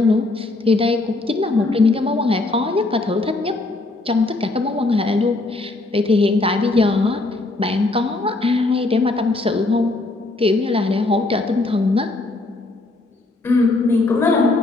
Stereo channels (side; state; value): right; quieter; 3.1 dB